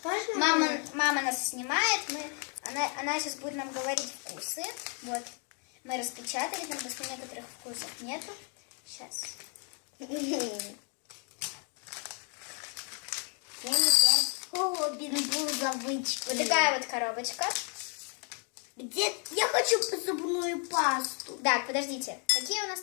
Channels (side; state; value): right; quieter; 39.2 dB